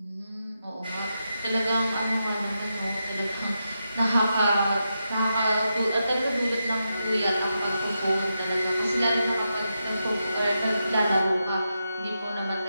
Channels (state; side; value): inverted; both; correlation -0.86